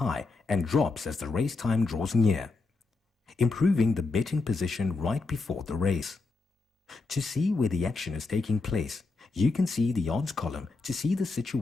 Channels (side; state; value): right; quieter; 3.7 dB